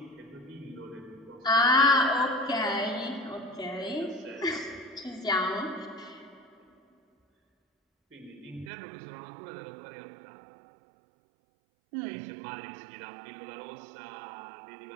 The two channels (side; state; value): left; drops out; at 8.7 s